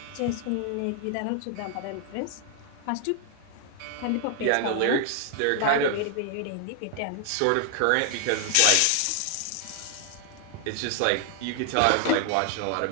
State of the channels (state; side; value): different; both; correlation 0.00